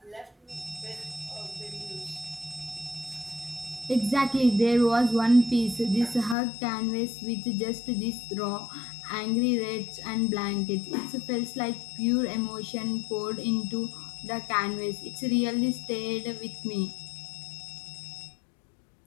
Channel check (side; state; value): right; drops out; at 6.4 s